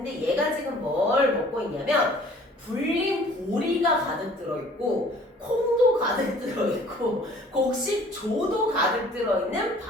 얘가 지금 뭘 먹고 있냐면 불린 보리가 가득 들어있고 콩도 가득 들어있고 곡식조도 가득 들어있는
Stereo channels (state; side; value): normal; both; correlation 0.52